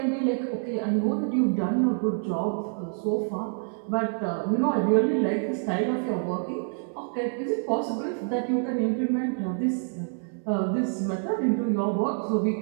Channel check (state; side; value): silent; left; 60 dB below the other